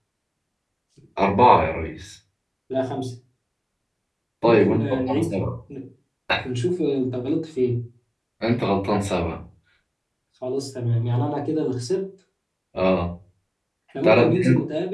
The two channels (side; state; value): both; identical; correlation 1.00